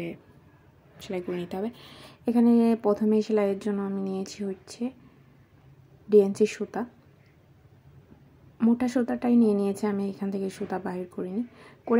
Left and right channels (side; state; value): both; identical; correlation 1.00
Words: সেলাই করে নিতে হবে। এখানে প্রথমে সেলাইয়ের জন্য আমি নিয়েছি হচ্ছে ডিএনসি সুতা। মোটা সুতাটাই নিয়েছি আমি, এখান থেকে সুতা বাহির করিনি।